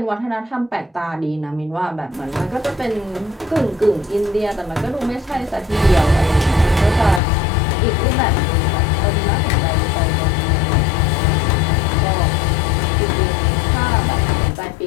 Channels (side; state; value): right; drops out; at 7.2 s